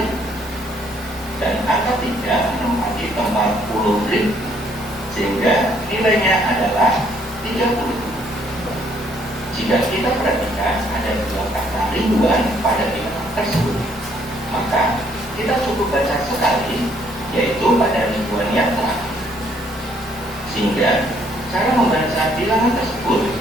Dan angka 3 menempati tempat puluh ribu, sehingga nilainya adalah 30. Jika kita perhatikan ada dua kata ribuan pada bilangan tersebut, maka kita cukup baca sekali, yaitu pada ribuan yang terakhir. Sehingga cara membaca bilangan tersebut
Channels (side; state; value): both; normal; correlation 0.67